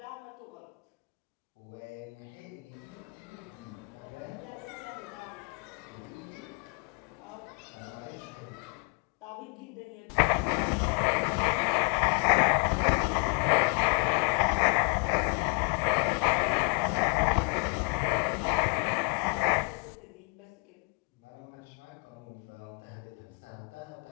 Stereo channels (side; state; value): right; quieter; 35.4 dB